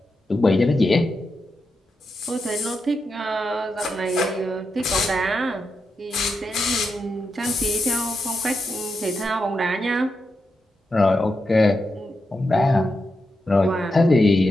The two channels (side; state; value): both; normal; correlation 0.86